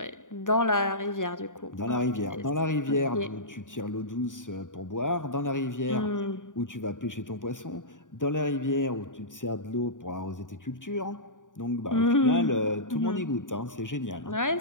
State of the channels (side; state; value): right; late; 0.87 ms